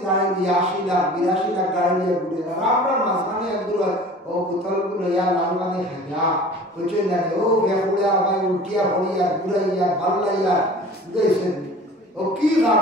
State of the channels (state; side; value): normal; both; correlation 0.43